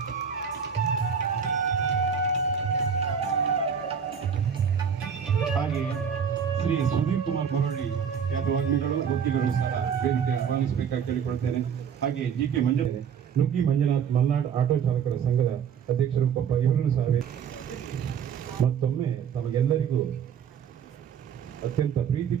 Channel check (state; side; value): quieter; left; 7.3 dB